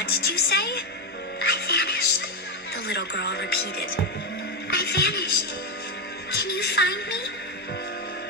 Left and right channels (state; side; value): normal; both; correlation 0.09